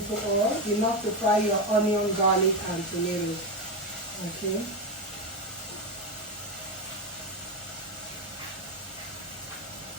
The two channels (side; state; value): both; normal; correlation 0.12